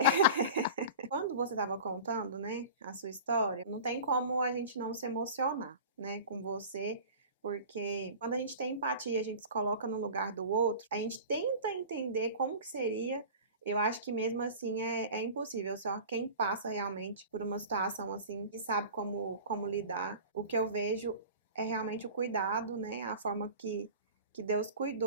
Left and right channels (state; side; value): inverted; both; correlation -0.37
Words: Quando você estava contando, né, a sua história, não tem como a gente não se emocionar, né, com você, porque quando a gente tem empatia, a gente se coloca no lugar do outro, a gente tenta entender como que seria. Eu acho que mesmo assim é impossível, só quem passa realmente por uma situação assim e sabe como lidar. O que eu vejo é realmente o cuidado, né, a forma que Deus